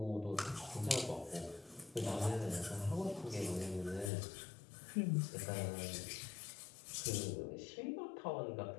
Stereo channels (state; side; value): drops out; right; at 4.1 s